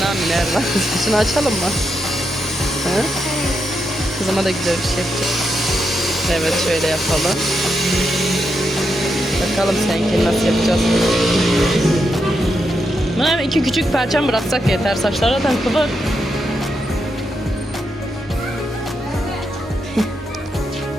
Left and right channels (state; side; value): normal; both; correlation 0.83